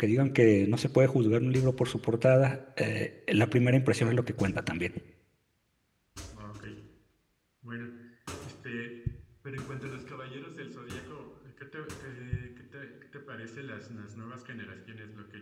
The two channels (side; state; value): both; identical; correlation 1.00